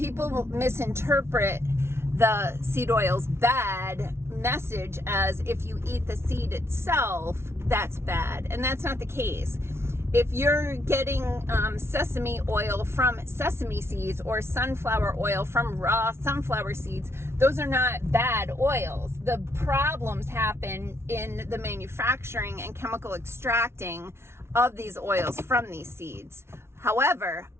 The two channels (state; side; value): late; left; 0.12 ms